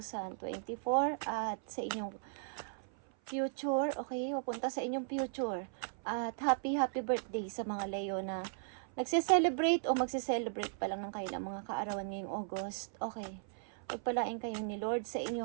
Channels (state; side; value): silent; left; 53 dB below the other